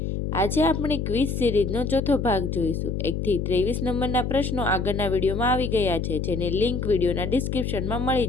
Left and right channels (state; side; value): noise; left; hum, 2 dB below the sound